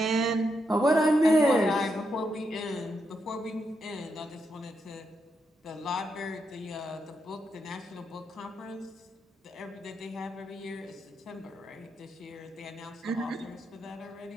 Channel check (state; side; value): normal; both; correlation 0.82